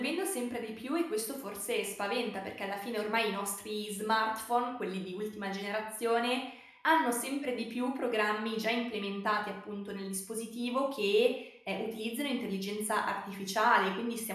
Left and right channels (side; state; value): both; identical; correlation 1.00